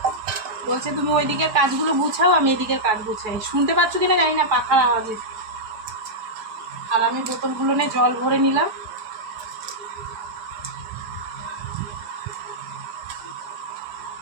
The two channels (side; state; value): left; late; 4.7 ms